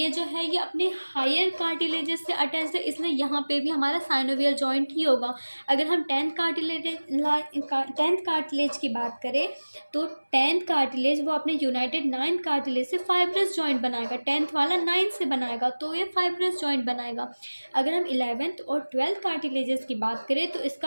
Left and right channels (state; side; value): inverted; both; correlation -1.00